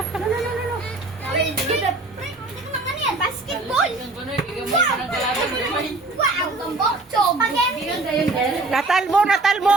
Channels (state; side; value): quieter; left; 3.2 dB